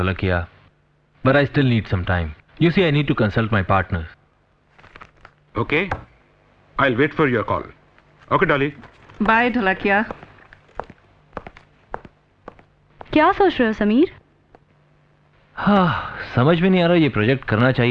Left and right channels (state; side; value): identical; both; correlation 1.00